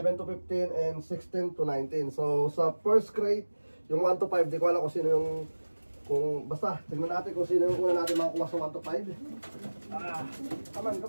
to 15, and 16 to 19. So sa first crate, yung 1 to 5, di ko alam kung sino yung basta, tignan natin kung sino yung una natin makakuha sa 1 to 5. Come on.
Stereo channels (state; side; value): inverted; both; correlation -1.00